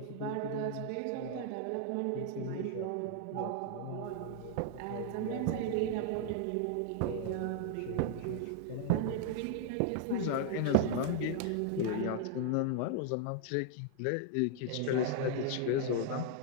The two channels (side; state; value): both; different; correlation -0.01